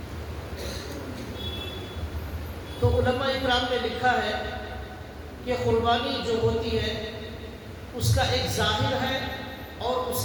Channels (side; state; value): both; identical; correlation 1.00